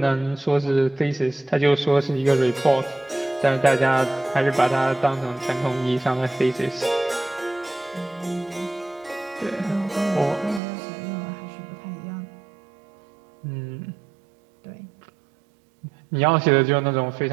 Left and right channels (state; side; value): drops out; left; at 10.6 s